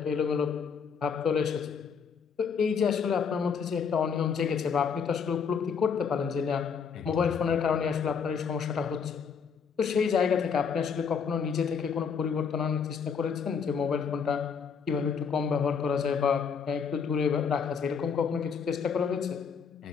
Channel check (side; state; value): right; quieter; 6.4 dB